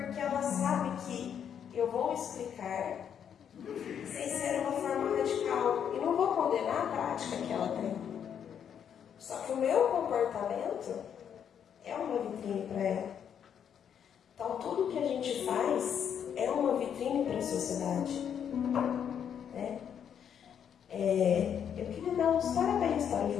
ela sabe que eu vou explicar sem ser uma forma radical e não vou condenar a prática que ela tem. Só que o meu comportamento é uma vitrine para ela. Então tudo que a gente faz é uma vitrine para a sociedade. Né? Eu queria dar uns parabéns para os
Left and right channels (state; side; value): quieter; right; 8.4 dB